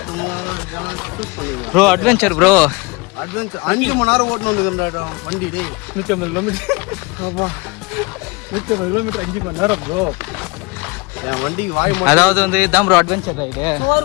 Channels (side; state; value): right; quieter; 25.4 dB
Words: ப்ரோ அட்வென்ச்சர் ப்ரோ. அட்வென்ச்சர் 5 மணி நேரம் ஓட்டணும் வண்டி. 150 கிலோமீட்டர் 5 மணி நேரம் ப்ரோ. என் வண்டிக்கு வாய் அதாவது வந்து இதான் ப்ரோ அட்வென்ச்சர் ரைடு. சோறு